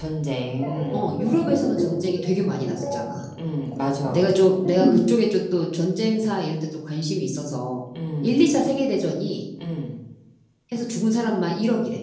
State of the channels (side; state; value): both; identical; correlation 1.00